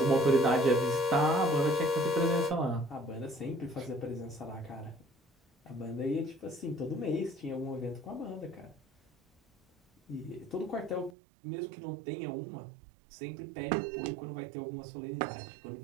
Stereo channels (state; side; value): drops out; left; at 11.2 s